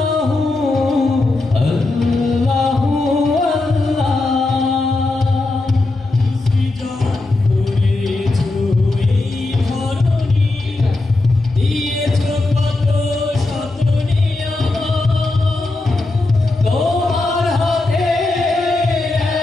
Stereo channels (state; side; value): quieter; right; 3.1 dB